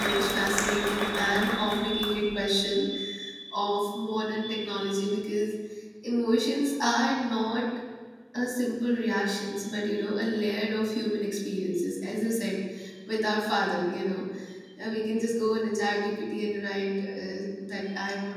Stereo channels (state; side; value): identical; both; correlation 1.00